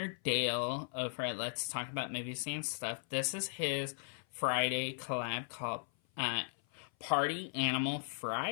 Dale over at Let's Talk About Movies and Stuff. This is his Friday collab called Party Animal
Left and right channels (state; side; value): silent; right; 53 dB below the other